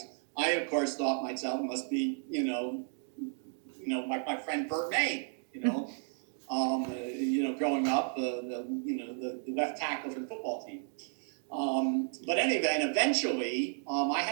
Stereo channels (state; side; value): silent; left; 56 dB below the other